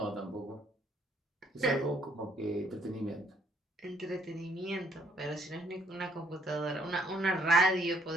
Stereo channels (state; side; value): normal; both; correlation 0.67